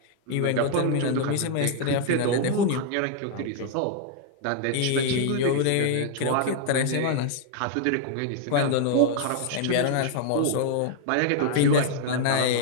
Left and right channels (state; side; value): different; both; correlation 0.00